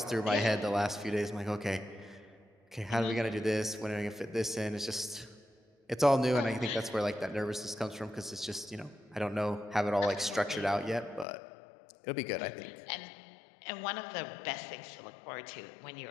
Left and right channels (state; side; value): drops out; right; at 11.2 s